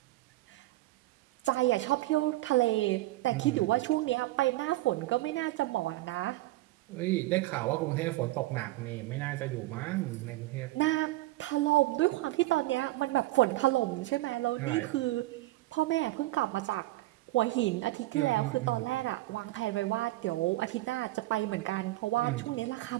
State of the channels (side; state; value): left; quieter; 17.8 dB